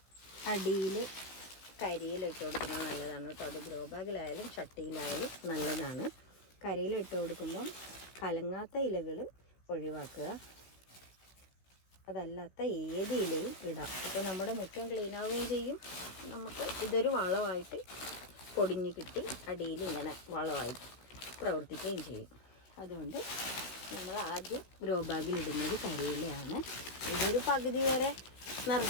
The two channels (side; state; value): right; late; 16 ms